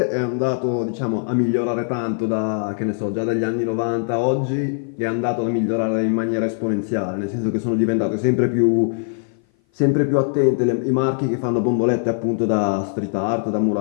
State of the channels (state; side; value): silent; right; 57 dB below the other